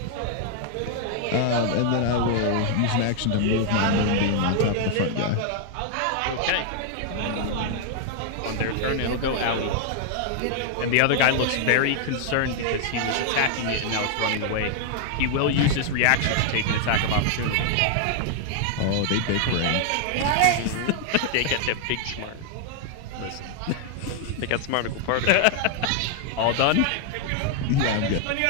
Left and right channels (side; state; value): both; different; correlation 0.00